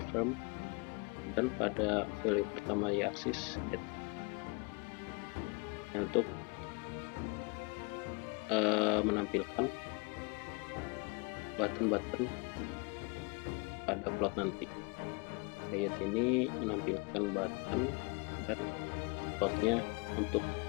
dan pada value pertama y axis date. Untuk menampilkan button-button pada plot nanti. Ayat ini menampilkan button dan plotnya untuk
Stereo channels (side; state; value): right; quieter; 31.4 dB